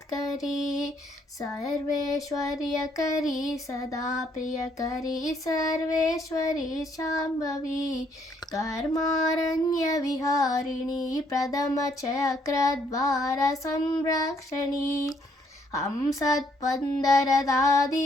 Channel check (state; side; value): normal; both; correlation 0.69